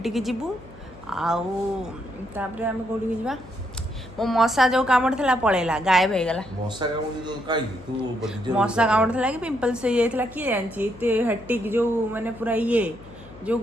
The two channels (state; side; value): noise; left; hum, 21 dB below the sound